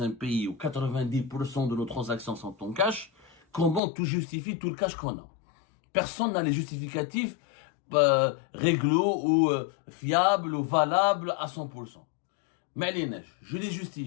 un pays où 90% de nos transactions sont en cash, comment tout justifie tout le cash qu'on a? Personne n'a les justificatifs réglo ou fiables ou valables à 100%. Mais les neiges, je les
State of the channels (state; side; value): drops out; right; at 3.8 s